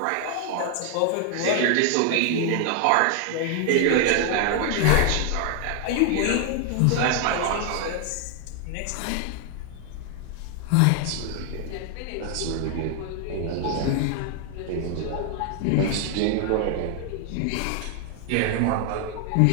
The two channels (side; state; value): both; different; correlation 0.00